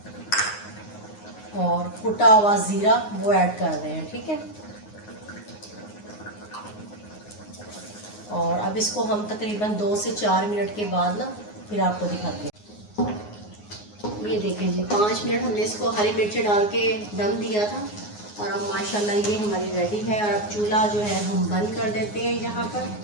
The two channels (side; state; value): right; late; 9.6 ms